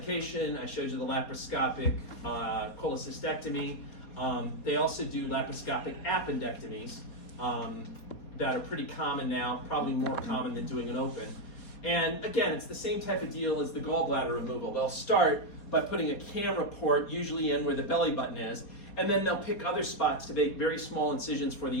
I showed you the laparoscopic cholecystectomy. They also do laparoscopic appendectomies that are pretty common now, probably more common than doing an open. And again, it's the same type of deal as the gallbladder removal. They'll start by putting a camera port usually in where the belly button is, and then they'll pick other spots to make very small incisions for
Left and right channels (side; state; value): right; late; 4.2 ms